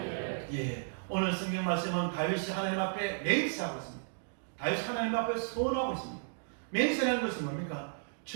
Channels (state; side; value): silent; left; digital silence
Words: 예, 오늘 성경 말씀은 다윗이 하나님 앞에 맹세하고 있습니다. 다윗이 하나님 앞에 소원하고 있습니다. 맹세라는 것은 뭡니까?